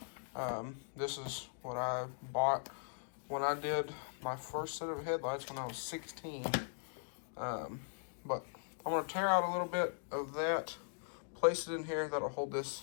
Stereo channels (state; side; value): silent; right; digital silence